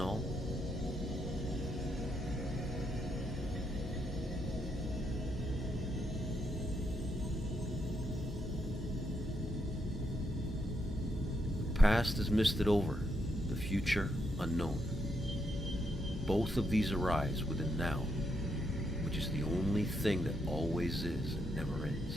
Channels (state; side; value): normal; both; correlation 0.79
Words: The past is misted over, the future unknown. Both of these arise within now, which is the only thing that always is and never